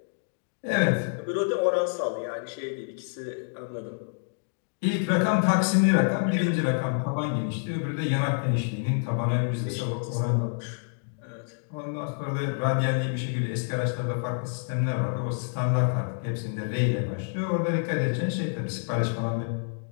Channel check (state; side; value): silent; right; digital silence